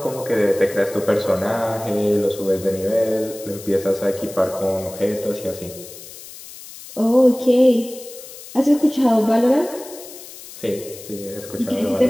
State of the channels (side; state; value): left; noise; hiss, 16 dB below the sound